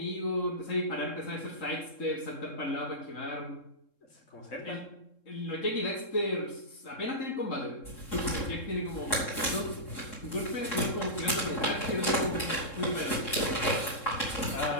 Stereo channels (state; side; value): late; right; 3.7 ms